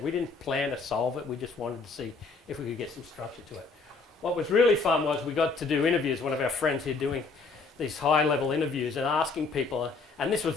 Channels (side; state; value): right; quieter; 4.2 dB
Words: We didn't plan to solve it. We just wanted to see if we could get some structure to it. What was really fun was we got to do interviews. One of our friends here doing these high-level interviews and asking people, and this was